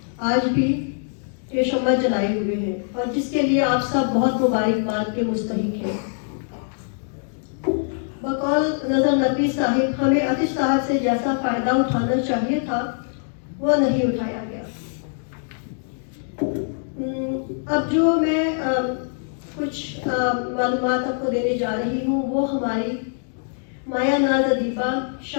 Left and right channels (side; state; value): right; silent; digital silence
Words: آج بھی یہ شمع جلائے ہوئے ہیں اور جس کے لیے آپ سب بہت مبارکباد کے مستحق ہیں. بقول نظر نقوی صاحب، ہمیں عتیق صاحب سے جیسا فائدہ اٹھانا چاہیے تھا وہ نہیں اٹھایا گیا. اب جو میں کچھ معلومات آپ کو دینے جا رہی ہوں وہ ہماری مایا ناز ادیبہ،